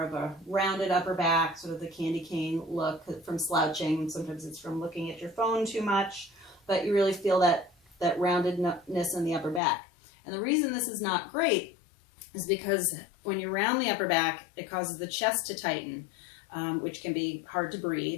of a rounded upper back, sort of the candy cane look from slouching. Sometimes it's from looking at your phone too much, but you really feel that roundedness in the upper back. And the reason this is not great is because when you round the upper back, it causes the chest to tighten, which can be hard to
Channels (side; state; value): right; drops out; at 9.6 s